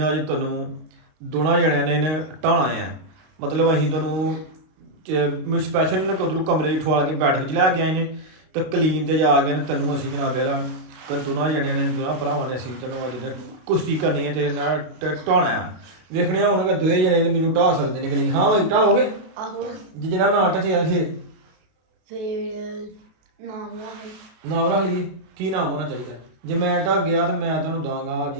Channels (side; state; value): left; late; 32 ms